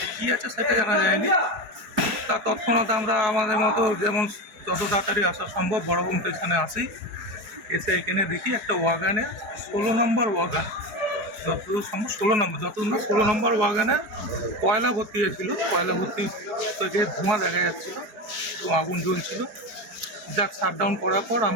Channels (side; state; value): left; late; 4.7 ms